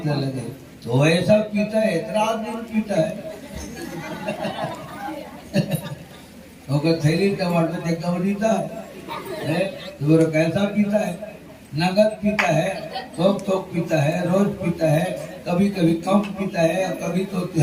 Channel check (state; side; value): identical; both; correlation 1.00